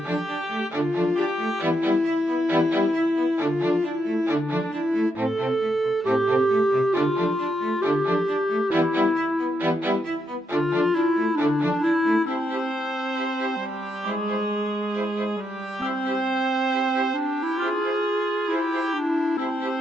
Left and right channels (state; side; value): normal; both; correlation 0.81